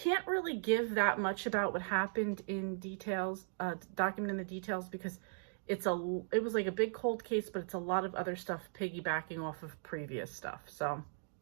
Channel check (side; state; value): left; silent; digital silence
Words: really give that much about what happened in details, document in the details, because it was like a big cold case, but it's a lot of other stuff piggybacking off of previous stuff. So,